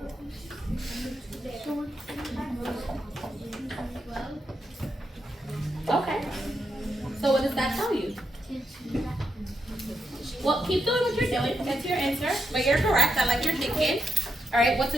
Okay. So what does that tell you? Well, keep doing what you're doing. That's your answer. But you're correct. I like your thinking. All right. What's a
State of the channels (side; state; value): both; normal; correlation 0.84